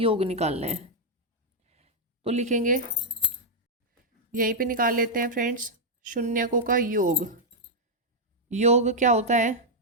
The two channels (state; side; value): normal; both; correlation -0.04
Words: निकालना है। तो लिखेंगे, यहीं पे निकाल लेते हैं फ्रेंड्स, शून्यकों का योग। योग क्या होता है